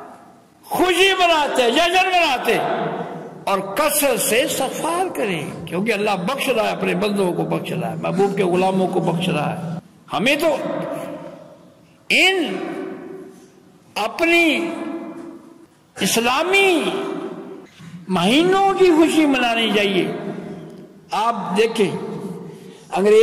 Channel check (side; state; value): both; identical; correlation 1.00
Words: خوشی مناتے، جشن مناتے اور کثرت سے استغفار کریں، کیونکہ اللہ بخش رہا ہے، اپنے بندوں کو بخش رہا ہے، محبوب کے غلاموں کو بخش رہا ہے۔ ہمیں تو ان اپنی اسلامی مہینوں کی خوشی منانی چاہیے۔ آپ دیکھیں